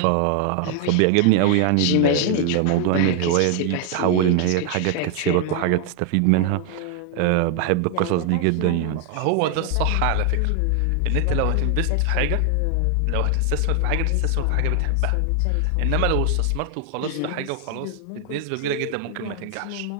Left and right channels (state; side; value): different; both; correlation 0.00